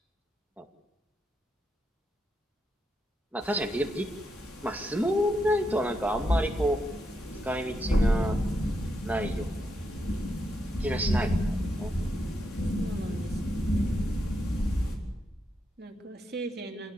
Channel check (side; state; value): both; normal; correlation 0.83